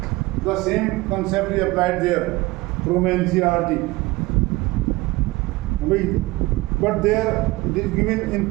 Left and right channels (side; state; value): left; quieter; 20.8 dB